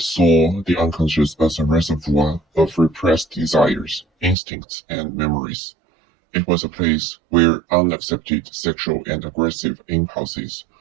the unconscious as a reservoir of repressed desires, instincts, and memories. It was a place where unaccepted sexual and aggressive impulses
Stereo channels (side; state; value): left; drops out; at 4.4 s